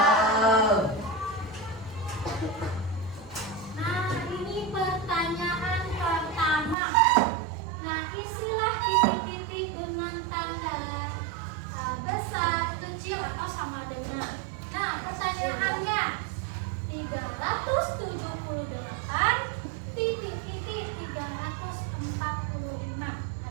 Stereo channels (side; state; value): left; drops out; at 6.8 s